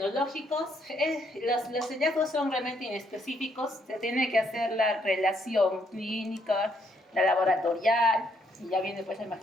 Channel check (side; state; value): both; normal; correlation 0.72